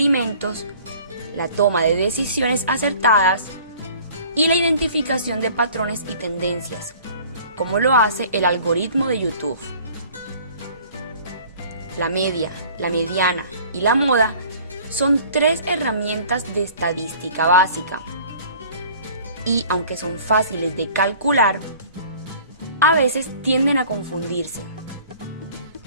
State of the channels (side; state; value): both; inverted; correlation -0.50